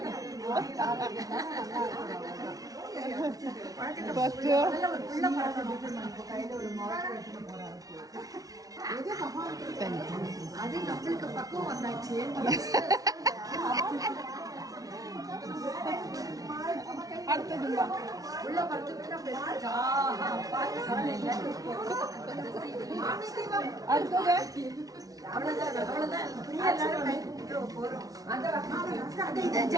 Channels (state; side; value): late; left; 0.18 ms